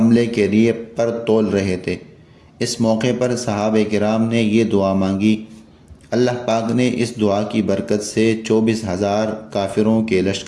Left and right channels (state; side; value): identical; both; correlation 1.00